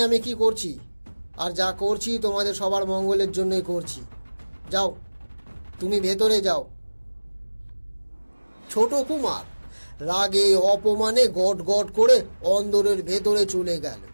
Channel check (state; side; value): inverted; both; correlation -1.00